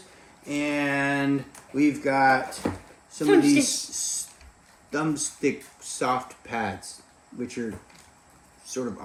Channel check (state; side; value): identical; both; correlation 1.00